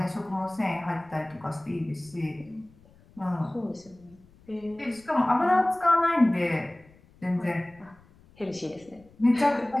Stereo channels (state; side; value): noise; left; rumble, 27 dB below the sound